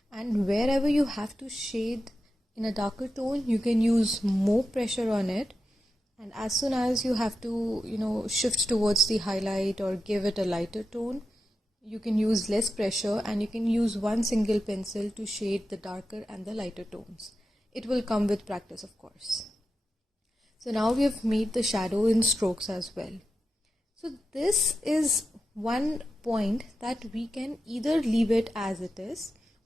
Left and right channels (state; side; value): normal; both; correlation 0.90